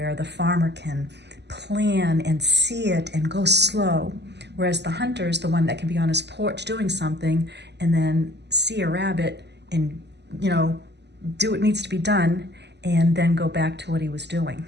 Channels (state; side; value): late; left; 0.50 ms